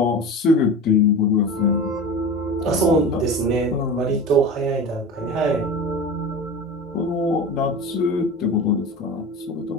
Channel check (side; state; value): both; normal; correlation 0.31